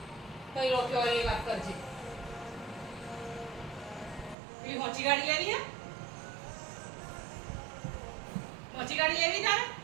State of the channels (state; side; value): drops out; left; at 4.4 s